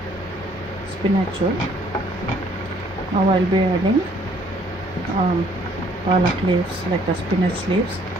ಸ್ಪಿನಚ್ಚು. Now I'll be adding palak leaves, like a spinach leaves.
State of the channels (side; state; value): both; normal; correlation 0.61